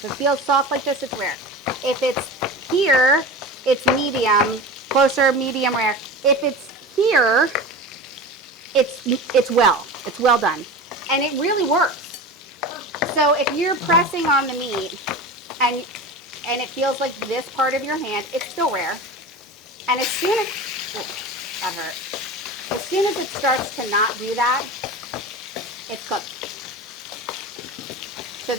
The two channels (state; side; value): normal; both; correlation 0.31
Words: it feels soft like this, it's rare. If it's here, it's medium, closer, medium rare. If it's here, it's well done. And it really works. So if you're pressing on the meat and it feels like this part of your hand, it's still rare. And as soon as, that hurt. As soon as it starts to not do that, it's cooked. So